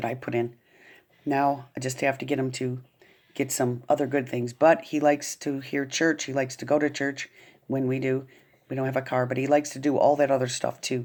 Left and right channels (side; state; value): both; identical; correlation 1.00